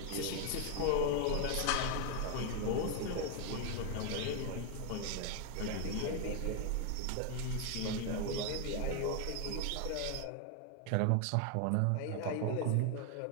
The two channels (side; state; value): both; different; correlation 0.01